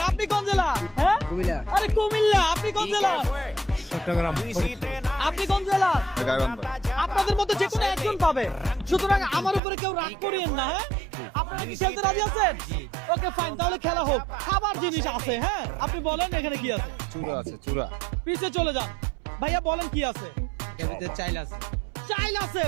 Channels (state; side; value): drops out; left; at 9.6 s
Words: আপনি কোন জেলা? হ্যাঁ কুমিল্লা। আরে কুমিল্লা। আপনি কোন জেলা? চট্টগ্রাম। আপনি কোন জেলা? গাইবান্ধা। আপনাদের মধ্যে যে কোনো একজন পাবে, সুতরাং আমার উপরে কেউ রাগ করিয়েন না। হ্যাঁ, আপনারা কি খেলতে রাজি আছেন? ওকে ফাইন, তাহলে খেলা হোক। খাবার জিনিস আছে। হ্যাঁ, আপনি বলেন এখানে কি আছে। চূড়া আছে, চূড়া। পিছে চলে যান ভাইয়া, বলেন কি আছে। এর ভিতরে চাইল আছে। চাইল আছে